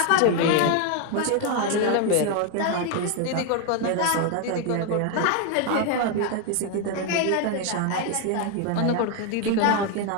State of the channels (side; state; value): both; different; correlation 0.01